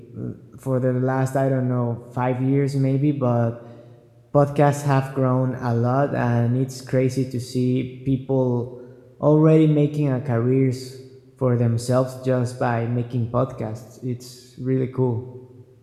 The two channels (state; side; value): identical; both; correlation 1.00